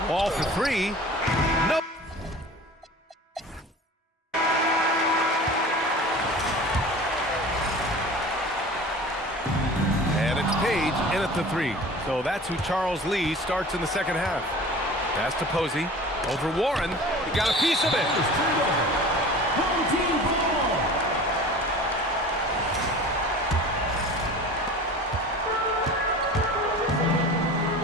Ball for 3. Nope. Page in at the 3. So that's who Charles Lee starts in the second half. Pass to Posey. Over Warren. He got a piece of it. Home team ball.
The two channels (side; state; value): both; normal; correlation 0.39